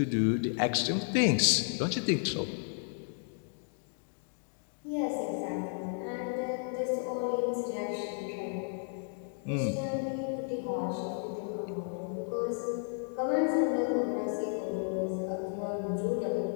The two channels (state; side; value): silent; right; 56 dB below the other